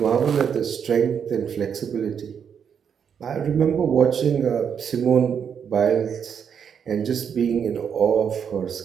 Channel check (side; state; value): left; quieter; 7.5 dB